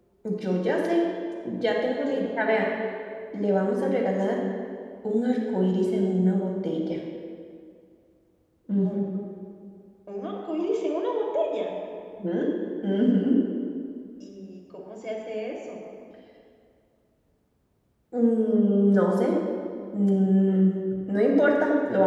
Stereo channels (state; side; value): identical; both; correlation 1.00